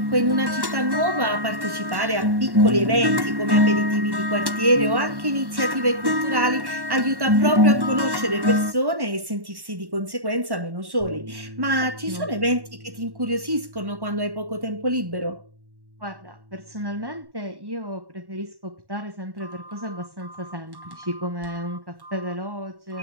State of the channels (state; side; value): late; left; 1.1 ms